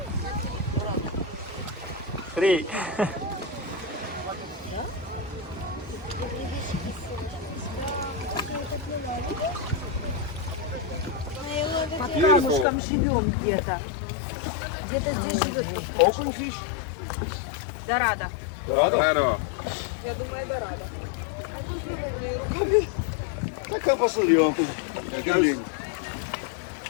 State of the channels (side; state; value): right; drops out; at 12.7 s